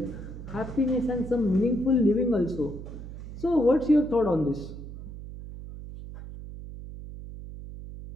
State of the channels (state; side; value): noise; right; hum, 12 dB below the sound